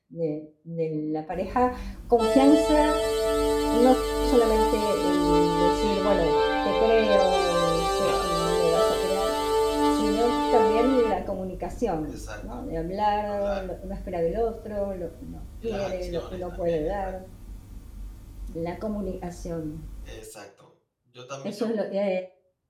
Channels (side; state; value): both; identical; correlation 1.00